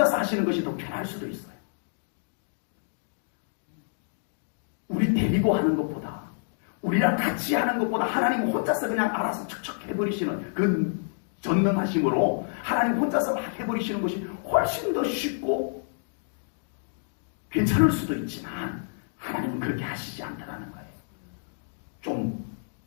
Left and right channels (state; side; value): silent; right; digital silence